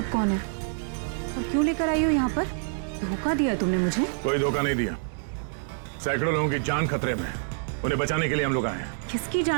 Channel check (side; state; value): left; silent; 60 dB below the other